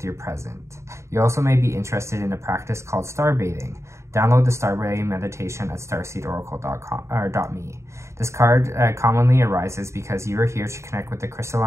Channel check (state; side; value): late; left; 0.14 ms